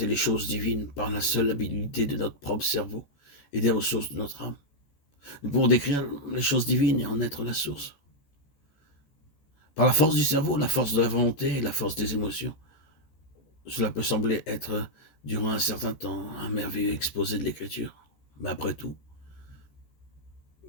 les choses divines par la seule habilité de notre propre cerveau et des ressources de notre âme. Nous pouvons décrire les choses divines et en être la source. Par la force du cerveau, la force de la volonté et la force des émotions. Cela peut sembler être, durant un certain temps, un merveilleux exposé de l'écriture. Mais après tout,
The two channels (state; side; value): late; right; 14 ms